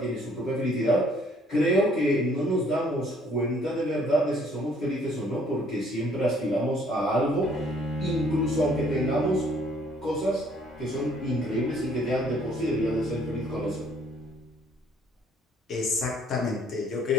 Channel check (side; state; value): both; normal; correlation 0.62